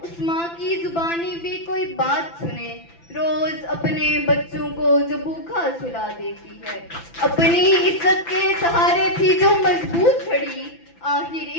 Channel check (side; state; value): right; late; 5.9 ms